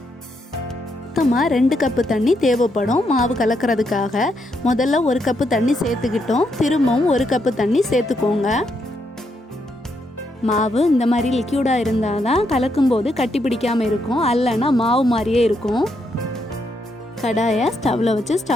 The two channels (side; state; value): both; normal; correlation 0.78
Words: மொத்தமாக 2 கப்பு தண்ணி தேவைப்படும் மாவு கலக்கிறதுக்காக. முதல்ல 1 கப்பு தண்ணி சேர்த்துக்கிட்டோம். திரும்பவும் 1 கப்பு தண்ணி சேர்த்துக்கோங்க. மாவு இந்த மாதிரி லிக்யூடாக இருந்தால் தான் கலக்கும்போது கட்டி பிடிக்காமல் இருக்கும், அல்லனா மாவு மாதிரியே இருக்கும். கடாயை ஸ்டவ்வில் வச்சு